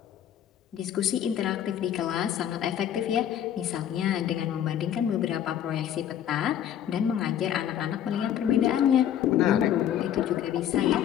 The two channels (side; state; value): right; quieter; 10.2 dB